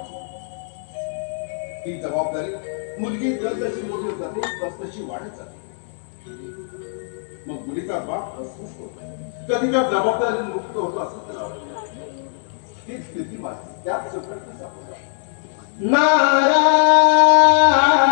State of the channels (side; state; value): right; silent; 65 dB below the other